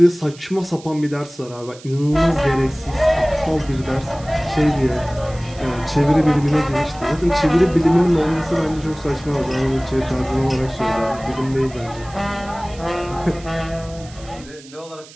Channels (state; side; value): noise; right; hiss, 21 dB below the sound